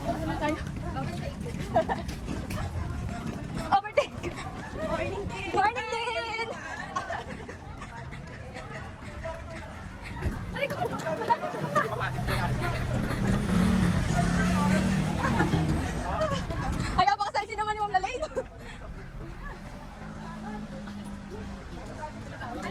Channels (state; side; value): identical; both; correlation 1.00